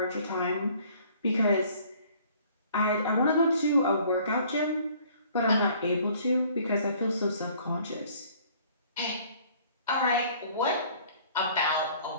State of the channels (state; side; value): inverted; both; correlation -0.56